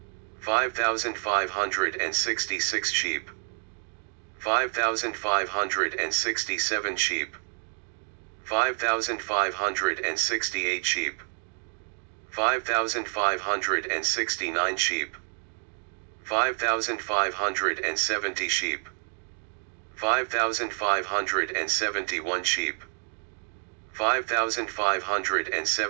5,566 sheep, 5,567 sheep, 5,568 sheep, 5,569 sheep, 5,570 sheep, 5,571 sheep,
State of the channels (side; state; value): left; silent; digital silence